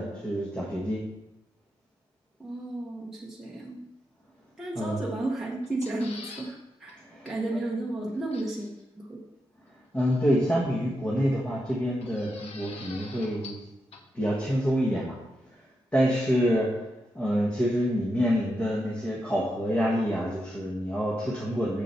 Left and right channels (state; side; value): normal; both; correlation 0.86